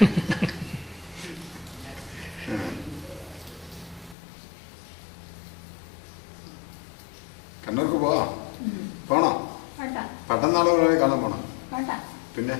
കണ്ണൂർക്ക് പോവാം? പോണോ? വേണ്ട. പട്ടന്നാളെ കാണാൻ പോണം? വേണ്ട. പിന്നെ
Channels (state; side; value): drops out; right; at 4.2 s